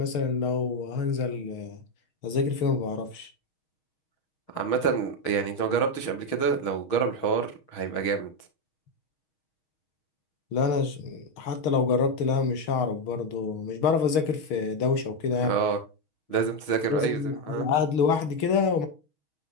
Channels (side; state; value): right; late; 6.4 ms